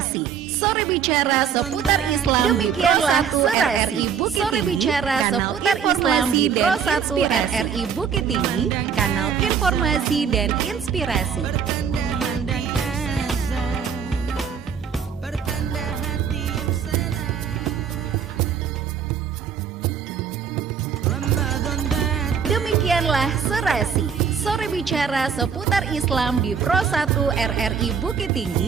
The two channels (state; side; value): quieter; left; 7.2 dB